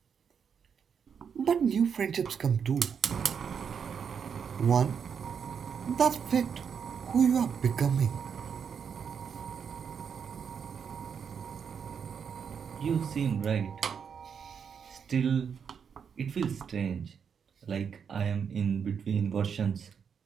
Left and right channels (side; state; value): left; quieter; 6.9 dB